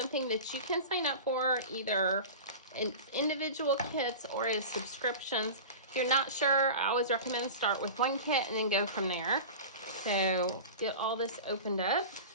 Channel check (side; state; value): both; inverted; correlation -0.33